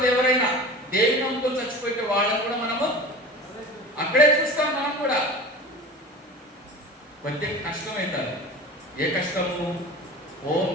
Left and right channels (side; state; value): both; normal; correlation 0.35